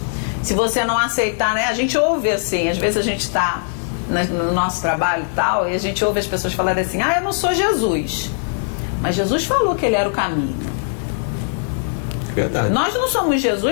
Se você não aceitar, né? A gente ouve assim, às vezes a gente está no nosso trabalho e tal, e a gente ouve as pessoas falarem assim, eu não sou Jesus. Mas Jesus falou que ele era o caminho. Verdade. Nós não somos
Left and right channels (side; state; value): right; silent; digital silence